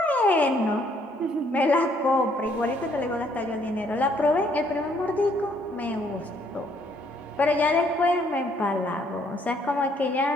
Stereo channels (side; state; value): both; normal; correlation 0.67